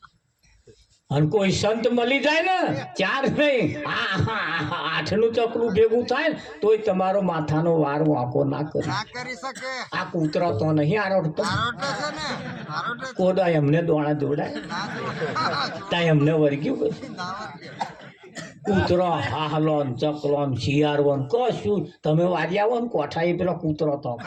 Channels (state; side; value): identical; both; correlation 1.00